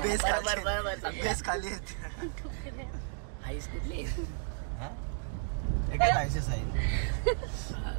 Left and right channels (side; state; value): left; silent; digital silence